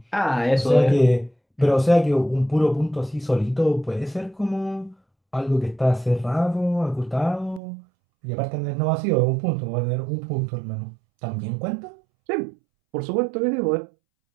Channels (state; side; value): drops out; left; at 7.6 s